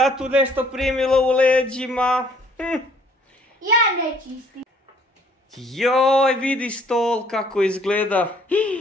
nešto primilo u leđima. Ja ne čistim. Joj, vidi stol kako izgleda.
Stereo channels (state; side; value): normal; both; correlation 0.60